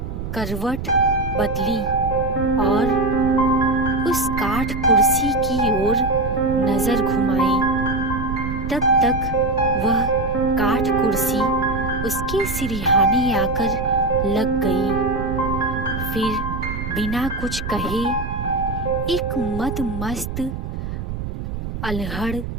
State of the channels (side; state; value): right; noise; rumble, 6 dB below the sound